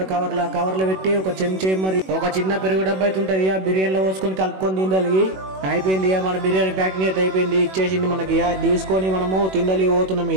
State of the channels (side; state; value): left; late; 21 ms